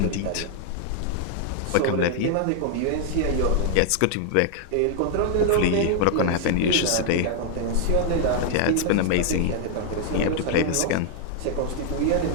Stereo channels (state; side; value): different; both; correlation 0.00